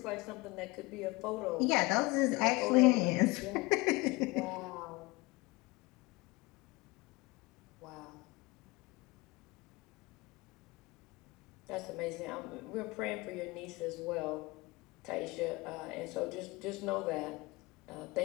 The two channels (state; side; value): quieter; right; 23.3 dB